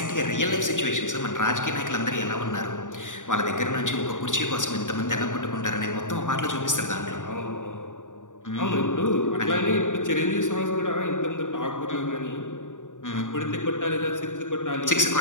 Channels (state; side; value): late; right; 0.87 ms